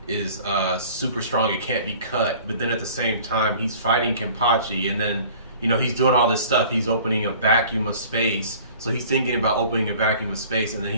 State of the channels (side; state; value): both; inverted; correlation -0.48